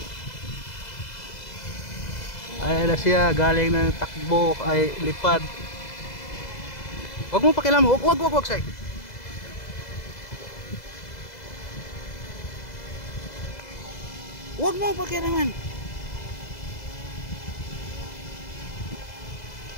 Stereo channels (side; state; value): right; late; 2.0 ms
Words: Ayan na siya, galing ng takbo ay lipad. Huwag mo pakialam, huwag say. Huwag mo pakialaman.